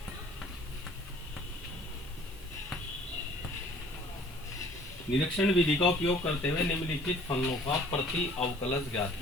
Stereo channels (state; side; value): normal; both; correlation 0.53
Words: निरीक्षण विधि का उपयोग करते हुए निम्नलिखित फलनों का प्रति अवकलज ज्ञात